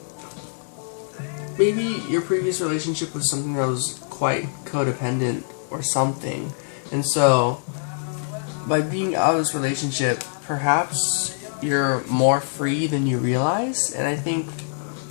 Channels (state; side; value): silent; right; 63 dB below the other